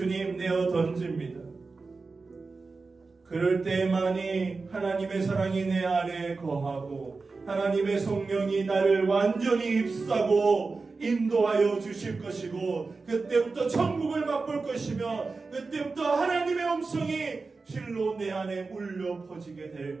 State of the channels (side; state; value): left; quieter; 4.1 dB